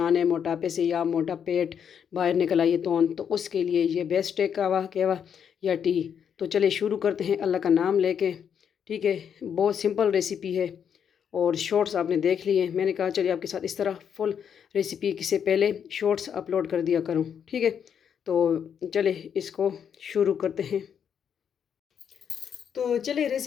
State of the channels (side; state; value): right; quieter; 7.9 dB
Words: है मोटापे से, या मोटा पेट बाहर निकल आई है तोंद, तो उसके लिए ये बेस्ट है कावा कहवा या टी। तो चले शुरू करते हैं अल्लाह का नाम लेके। ठीक है, बहुत सिंपल रेसिपी है और शॉर्ट्स आपने देख लिए। मैंने कहा चलिए आपके साथ इस तरह फुल रेसिपी से पहले शॉर्ट्स अपलोड कर दिया करूँ। ठीक है, तो चले इसको शुरू करते हैं। तो चलिए